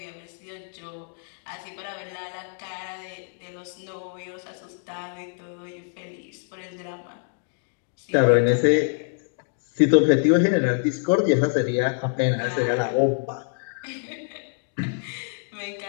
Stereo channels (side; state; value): right; silent; digital silence